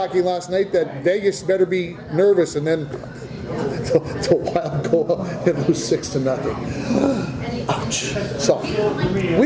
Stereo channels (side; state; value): both; identical; correlation 1.00